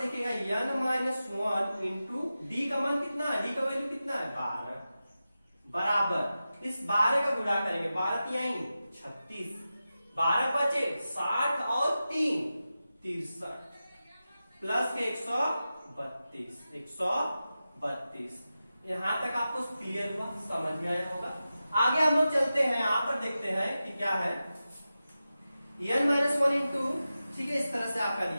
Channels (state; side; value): inverted; both; correlation -0.93